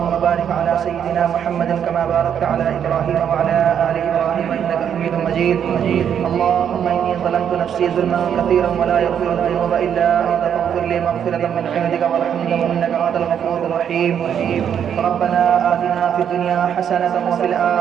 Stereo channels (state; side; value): quieter; left; 8.6 dB